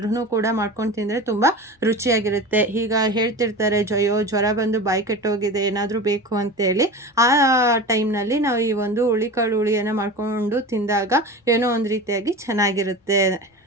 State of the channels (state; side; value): normal; both; correlation 0.31